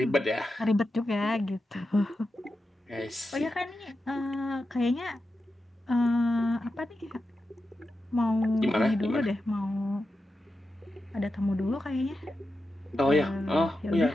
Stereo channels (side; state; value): both; normal; correlation 0.90